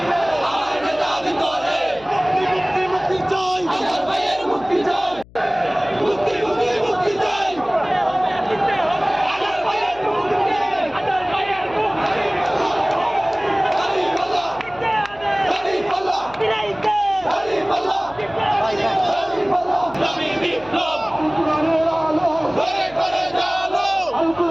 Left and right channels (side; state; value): left; noise; hum, 24 dB below the sound